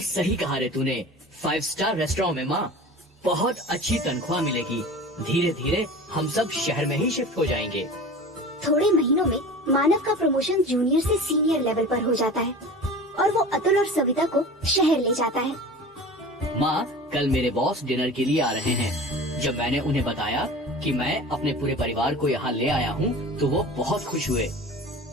सही कहा रे तूने। 5 स्टार रेस्टोरेंट में माँ, बहुत अच्छी तनख्वाह मिलेगी। धीरे धीरे हम सब शहर में ही शिफ्ट हो जाएंगे। थोड़े महीनों में मानव का प्रमोशन जूनियर से सीनियर लेवल पर हो जाता है और वो अतुल और सविता को शहर ले जाता है। माँ, कल मेरे बॉस डिनर के लिए आ रहे हैं। जब मैंने उन्हें बताया कि मैं अपने पूरे परिवार को यहाँ ले आया हूँ तो वो बहुत खुश हुए।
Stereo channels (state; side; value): normal; both; correlation 0.37